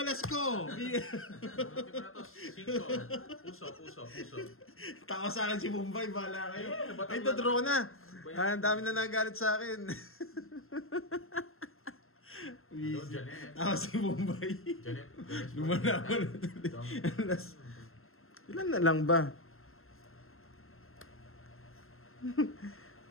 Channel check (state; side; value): late; right; 0.61 ms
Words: las ko. Tingnan na to, 5. Puso. Tawa sa akin si Mumbai, bahala kayo. ba't Ay, wala draw na. Ba yan? Ang dami na nagalit sa akin. Hello, Janet. Tawa si Mumbai. Janet. Lumalaman na tuloy. Alas. Ilan na lang ba?